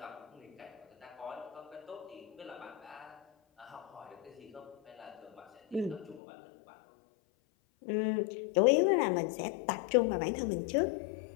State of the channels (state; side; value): drops out; right; at 6.2 s